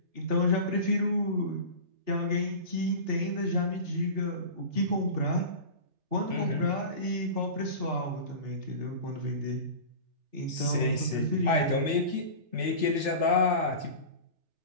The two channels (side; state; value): left; late; 3.4 ms